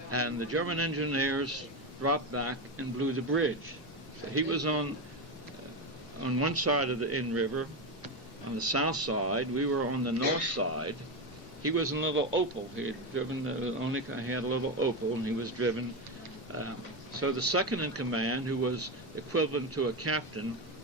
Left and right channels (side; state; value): both; normal; correlation 0.13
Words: and the German engineers dropped back and blew the bridge. So he was on one side of the Inn River, on the south side. We were on the north side. He was in a little Opel. He had driven he had a little Opel, and he was driven. So the second in command, who was equivalent to a captain,